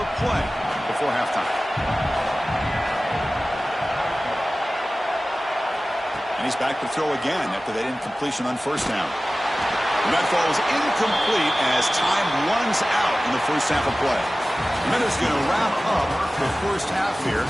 play before halftime. And he's back to throw again after that incompletion on 1st down. And that falls incomplete as time runs out in the first half of play. And that is going to wrap up the first half here.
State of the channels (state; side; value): normal; both; correlation 0.97